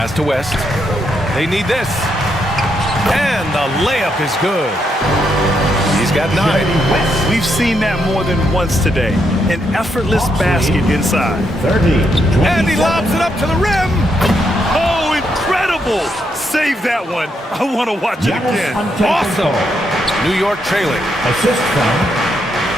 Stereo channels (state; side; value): normal; both; correlation 0.78